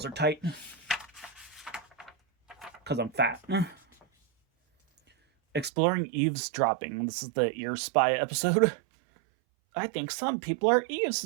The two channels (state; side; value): drops out; left; at 5.7 s